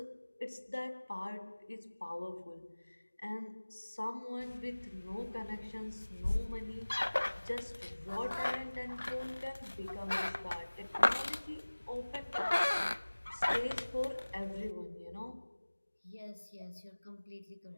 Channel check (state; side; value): inverted; both; correlation -1.00